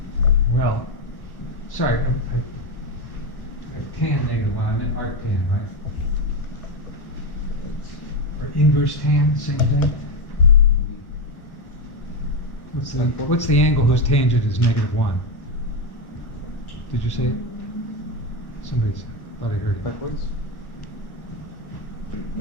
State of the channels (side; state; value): right; late; 1.0 ms